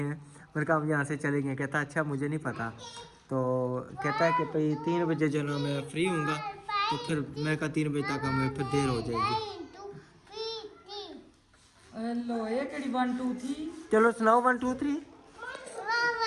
हैं? मैंने कहा हम यहाँ से चले गए। कहता अच्छा मुझे नहीं पता। तो कहता है कि भाई 3 बजे जो ना मैं फ्री होऊंगा। तो फिर मैं कहा 3 बजे तक हमें फिर देर हो जाएगी। हेलो, ये कड़ी 1 2 3। चलो सुनाओ 1 2 3।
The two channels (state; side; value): identical; both; correlation 1.00